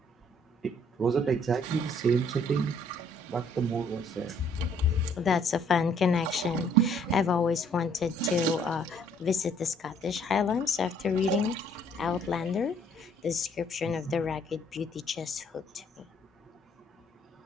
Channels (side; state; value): both; normal; correlation 0.63